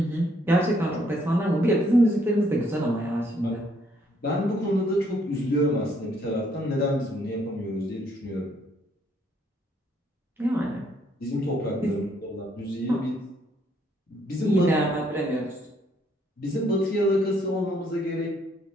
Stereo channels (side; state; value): both; normal; correlation 0.68